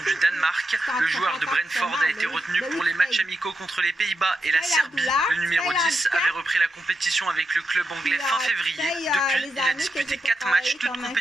du Danemark. Le joueur de Brentford a été retenu pour les matchs amicaux contre les Pays-Bas et la Serbie. Le numéro 10 avait repris la compétition avec le club anglais fin février. Depuis, il a disputé 4 matchs, toutes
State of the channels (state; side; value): normal; both; correlation 0.86